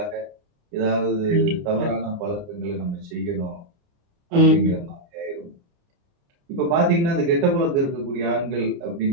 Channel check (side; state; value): left; late; 29 ms